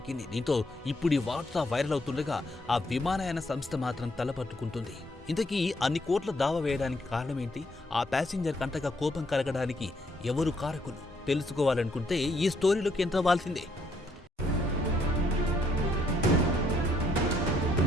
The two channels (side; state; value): both; normal; correlation 0.71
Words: దీంతో ఇప్పుడు ఈ వార్త వైరల్ అవుతుండగా ఆ విమానయాన సంస్థ మాత్రం తలపట్టుకుంటుంది. ఇంతకీ అన్ని కోట్ల దావా వేయడానికి కారణమేంటి? ఆ ప్యాసింజర్ కంటగా కోపం కలగడానికి ఎవరు కారకులు? తెలుసుకోవాలనుకుంటే ఈ స్టోరీలోకి ఎంటర్ అవ్వాల్సిందే.